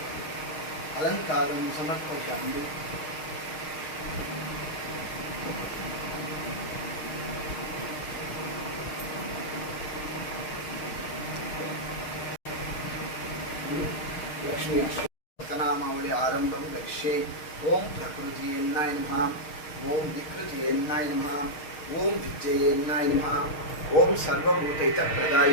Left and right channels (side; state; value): right; late; 6.4 ms